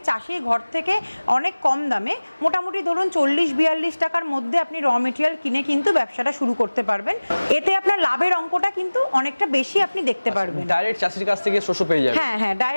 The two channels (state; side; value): inverted; both; correlation -1.00